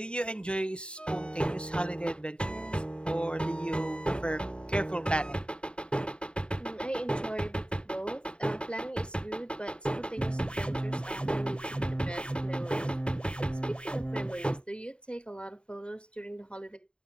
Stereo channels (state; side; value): late; right; 0.052 ms